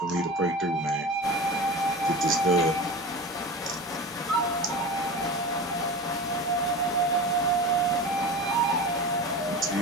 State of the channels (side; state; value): both; normal; correlation 0.30